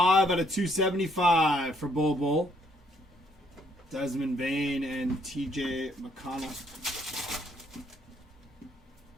out of 275 for Bull. Desmond Bain and TJ McConnell.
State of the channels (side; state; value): both; normal; correlation 0.69